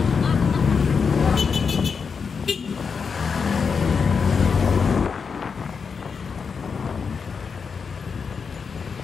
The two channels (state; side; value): quieter; right; 5.7 dB